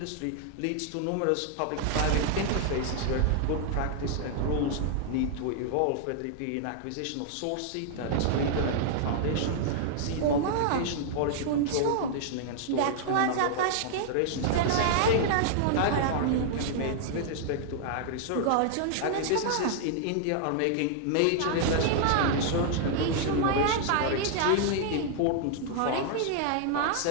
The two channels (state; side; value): different; both; correlation -0.01